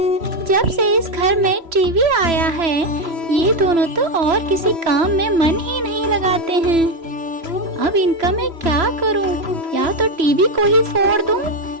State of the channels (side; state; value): left; late; 3.0 ms